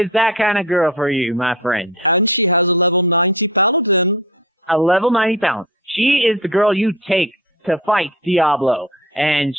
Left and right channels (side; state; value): both; normal; correlation 0.33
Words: that kind of girl for you, my friend. And she has a level 90 paladin. A level 90 paladin. She is the girl you take to fight Diablo, and